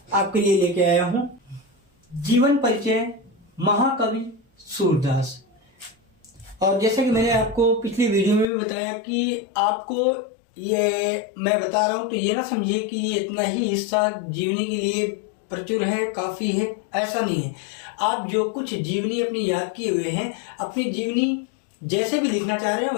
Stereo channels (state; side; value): drops out; right; at 8.5 s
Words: आपके लिए लेके आया हूं। जीवन परिचय महाकवि सूरदास। और जैसा कि मैंने आपको पिछली वीडियो में भी बताया कि आपको ये मैं बता रहा हूं तो ये ना समझिए कि ये इतना ही हिस्सा जीवनी के लिए प्रचुर है, काफी है, ऐसा नहीं है। आप जो कुछ जीवनी अपनी याद किए हुए हैं, अपनी जीवनी जैसे भी लिखना चाह रहे हैं